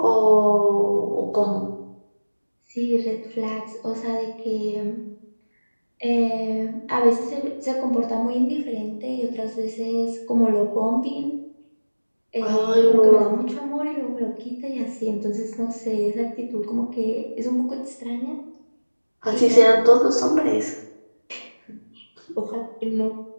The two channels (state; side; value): inverted; both; correlation -1.00